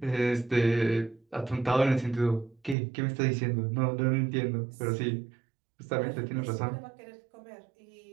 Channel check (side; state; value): left; drops out; at 2.8 s